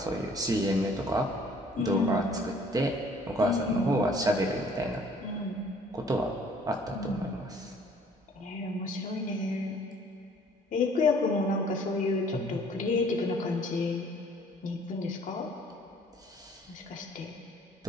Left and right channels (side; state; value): both; normal; correlation 0.57